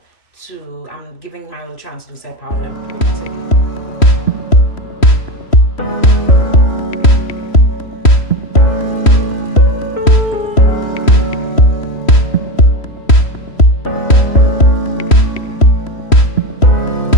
I'm giving my little translucent powder pretty.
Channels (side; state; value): right; late; 3.1 ms